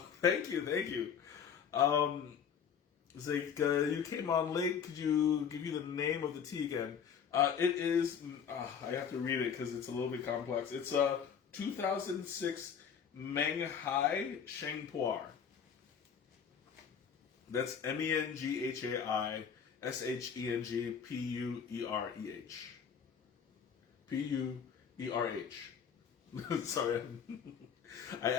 thank you. It's like, you came on late. Could you give you the name of the tea again? It is, I have to read it because it's a little bit complex. It's a 2006 Menghai Sheng. That's Menghai Shengpuerh. Puerh. Sorry, I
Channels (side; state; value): right; quieter; 7.4 dB